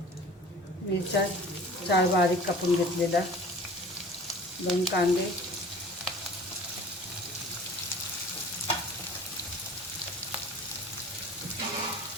मिरच्या 4 बारीक कापून घेतलेल्या, 2 कांदे,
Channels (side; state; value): both; normal; correlation 0.44